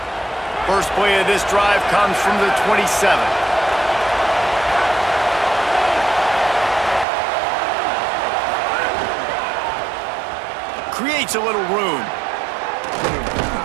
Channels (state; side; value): drops out; left; at 7.1 s